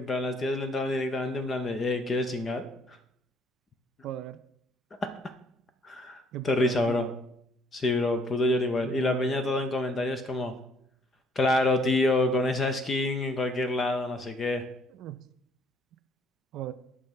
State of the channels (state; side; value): normal; both; correlation 0.64